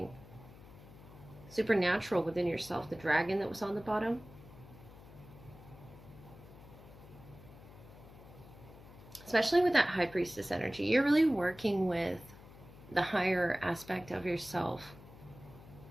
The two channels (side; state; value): left; noise; hum, 19 dB below the sound